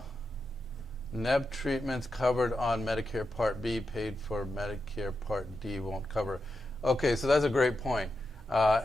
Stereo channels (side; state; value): both; normal; correlation 0.88